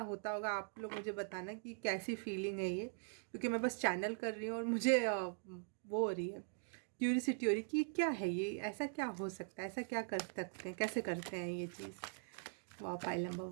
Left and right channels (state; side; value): silent; left; digital silence